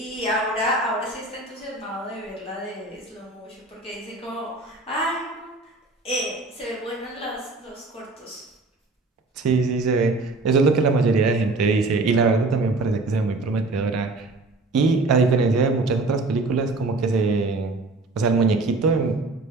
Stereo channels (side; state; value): left; quieter; 3.2 dB